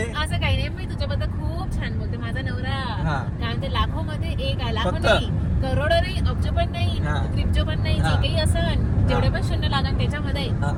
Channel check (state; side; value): identical; both; correlation 1.00